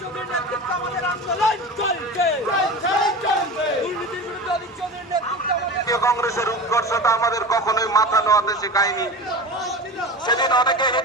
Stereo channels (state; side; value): normal; both; correlation 0.31